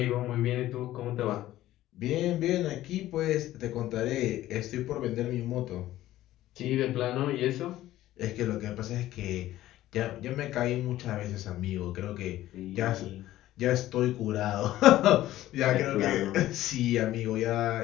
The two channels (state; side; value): quieter; right; 14.6 dB